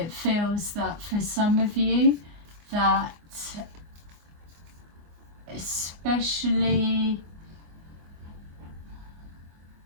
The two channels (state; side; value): late; left; 24 ms